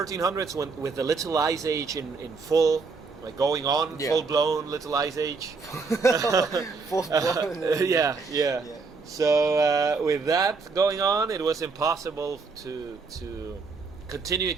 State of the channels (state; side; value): quieter; left; 4.5 dB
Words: with the Little Ice Age in full, like going on, full-blown Little Ice Age. Full-blown. Yeah. So with that going on, it was impossible to continue in